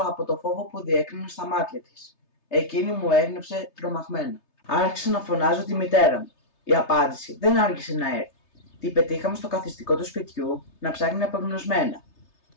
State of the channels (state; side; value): late; right; 3.3 ms